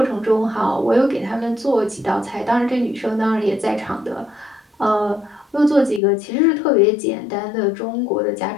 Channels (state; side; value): drops out; right; at 6.0 s